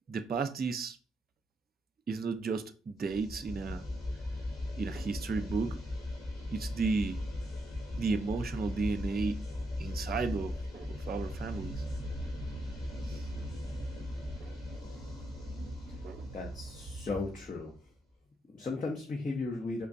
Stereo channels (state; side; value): normal; both; correlation 0.80